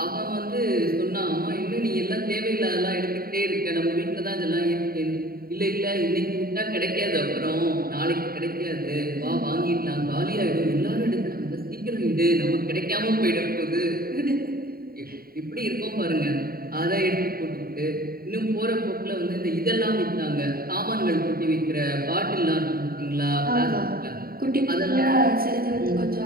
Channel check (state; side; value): late; left; 0.43 ms